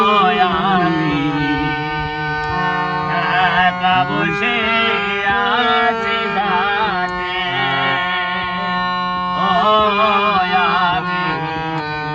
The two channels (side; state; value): both; identical; correlation 1.00